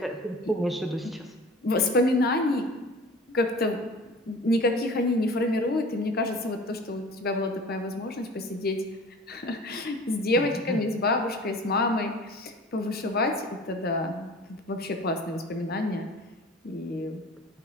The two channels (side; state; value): both; normal; correlation 0.42